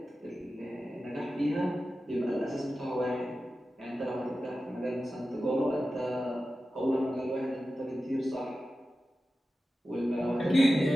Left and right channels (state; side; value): normal; both; correlation 0.93